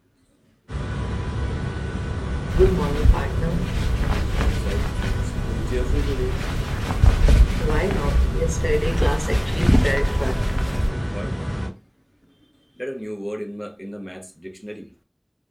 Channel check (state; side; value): identical; both; correlation 1.00